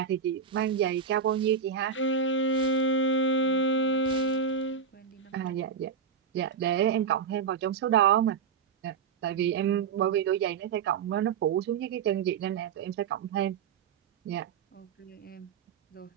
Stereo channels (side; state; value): left; quieter; 6.2 dB